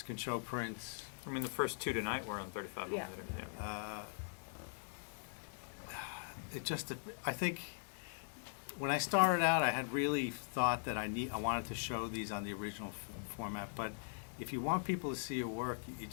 can show prints. I mean, the first 2 tonight were on 35 Yeah. millimeter. Yeah. I think when I started out, I had really thought that I wanted to show these on the original format. But if you want people to see your work,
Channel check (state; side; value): silent; right; digital silence